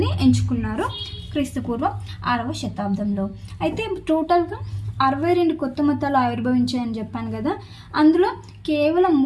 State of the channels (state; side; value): identical; both; correlation 1.00